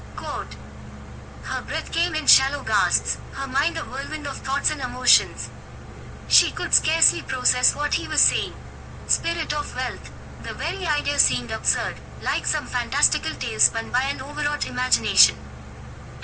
Quote. Her breath came in shallow gasps, her mind a whirlwind of thoughts and emotions. She could scarcely process what he was saying. Spirit of wealth. The very idea seemed absurd, like some fantastical tale spun by an overwrought imagination.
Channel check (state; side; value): identical; both; correlation 1.00